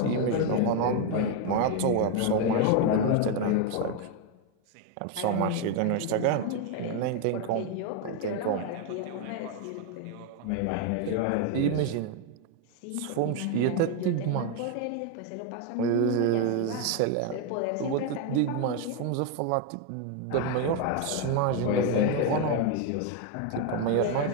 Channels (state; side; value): different; both; correlation 0.01